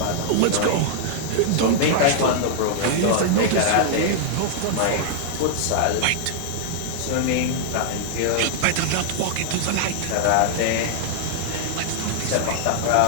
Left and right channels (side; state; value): both; different; correlation -0.01